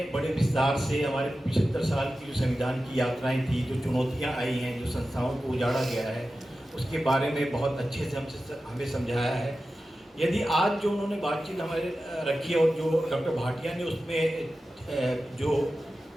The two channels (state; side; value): normal; both; correlation 0.94